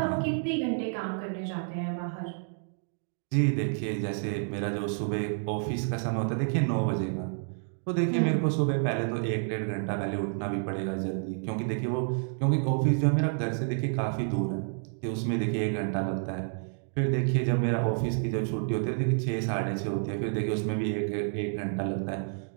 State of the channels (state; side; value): silent; left; 58 dB below the other